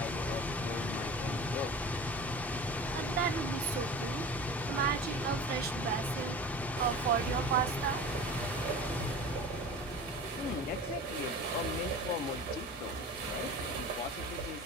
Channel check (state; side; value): normal; both; correlation 0.37